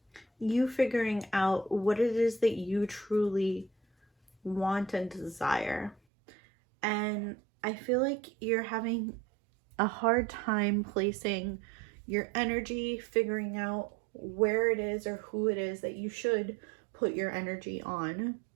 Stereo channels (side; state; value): left; drops out; at 6.0 s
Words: you figuring out what it is that you truly want and desire. And I feel like you're having a hard time placing your energy, figuring out where it is or who it is that you should put your energy on